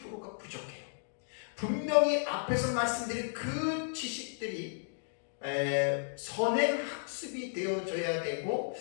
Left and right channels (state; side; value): silent; right; digital silence